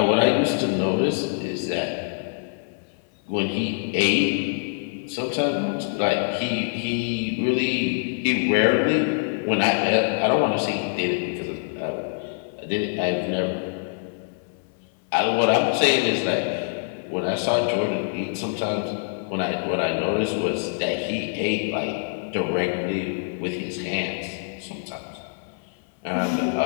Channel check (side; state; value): right; silent; 59 dB below the other